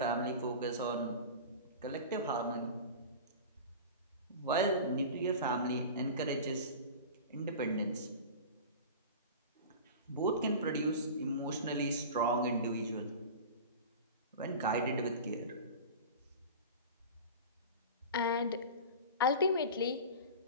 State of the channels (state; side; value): inverted; both; correlation -0.33